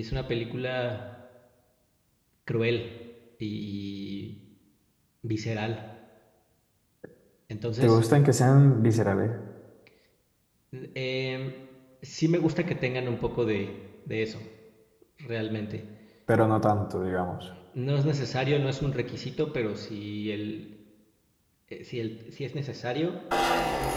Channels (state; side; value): identical; both; correlation 1.00